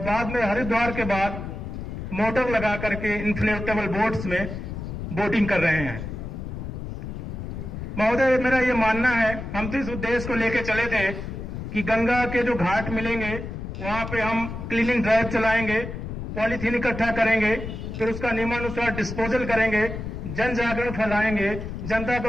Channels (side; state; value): left; noise; rumble, 7 dB below the sound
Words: में हरिद्वार के बाद मोटर लगा करके इन्फ्लेटेबल बोट्स में बोटिंग कर रहे हैं। महोदय, मेरा ये मानना है, हम तो इस उद्देश्य को लेकर चले थे कि गंगा के जो घाट मिलेंगे वहां पे हम क्लीनिंग ड्राइव चलाएंगे, पॉलीथीन इकट्ठा करेंगे, फिर उसका नियमानुसार डिस्पोजल करेंगे, जन जागरण फैलाएंगे, जनता